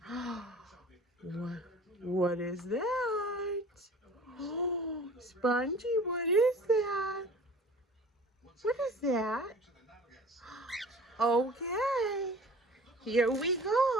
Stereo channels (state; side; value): normal; both; correlation 0.45